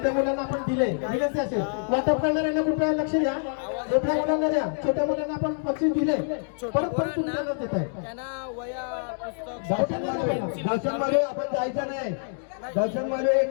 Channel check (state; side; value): silent; right; digital silence